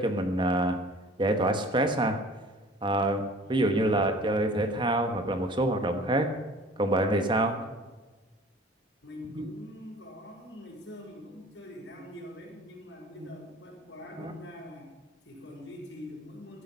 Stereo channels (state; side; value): normal; both; correlation 0.47